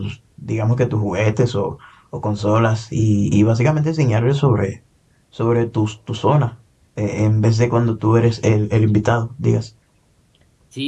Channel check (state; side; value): identical; both; correlation 1.00